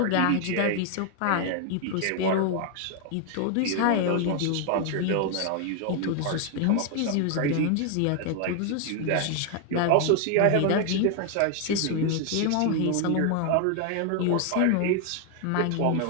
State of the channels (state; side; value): different; both; correlation 0.00